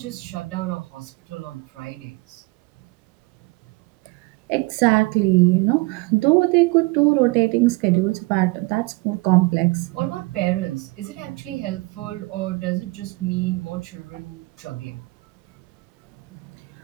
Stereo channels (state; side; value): quieter; left; 24.6 dB